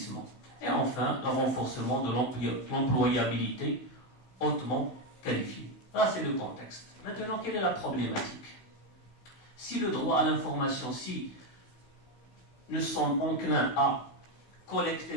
Et enfin, le renforcement de l'employabilité hautement qualifiée. Là, c'est le contexte. Maintenant, quelle est la problématique? Si le droit à l'information, si nous sommes enclins à collecter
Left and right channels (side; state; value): right; late; 16 ms